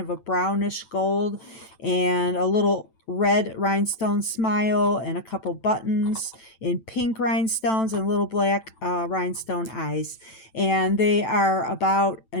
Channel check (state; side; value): late; right; 9.0 ms